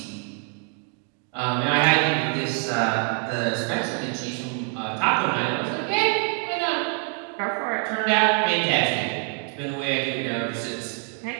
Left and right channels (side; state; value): left; quieter; 35.2 dB